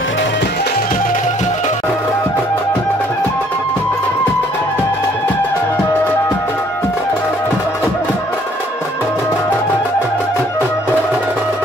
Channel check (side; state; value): both; normal; correlation 0.62